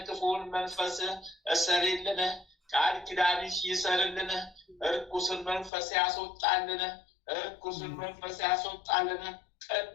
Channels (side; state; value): right; drops out; at 5.7 s